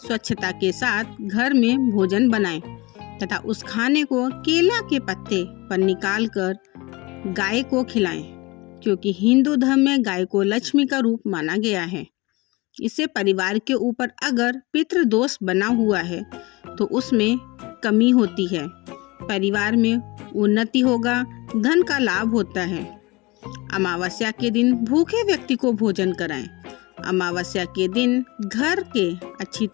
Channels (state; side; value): quieter; right; 23.9 dB